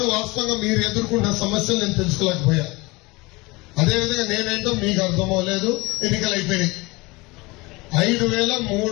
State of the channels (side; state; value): right; quieter; 23.8 dB